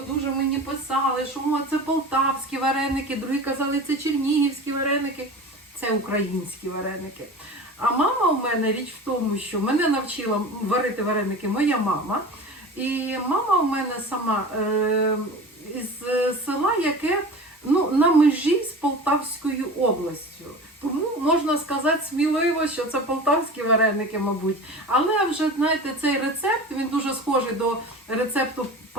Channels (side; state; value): both; normal; correlation 0.35